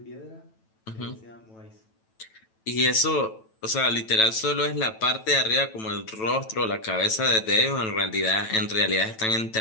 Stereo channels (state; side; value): late; right; 9.1 ms